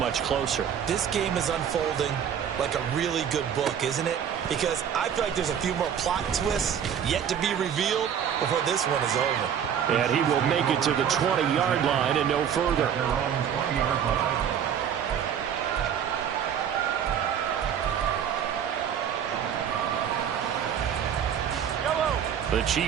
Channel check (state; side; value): quieter; left; 8.6 dB